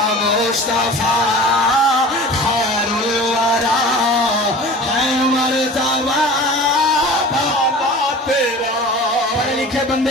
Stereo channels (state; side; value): normal; both; correlation 0.39